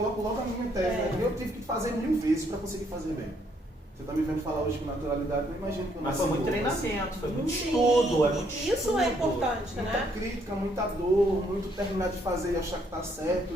logo a minha tese. Eu tive que fazer 1000 vezes para conseguir fazer bem. Você está me vendo falar hoje com naturalidade, não imagino que eu não Mas foi muito sei como, treinamento, foi muito estudo, é muito Isso estudo. é importante, muita né? crítica, muita dor, muito terminar de fazer e achar que tá certo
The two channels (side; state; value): both; normal; correlation 0.70